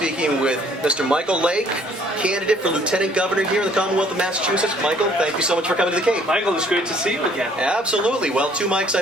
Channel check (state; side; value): normal; both; correlation 0.60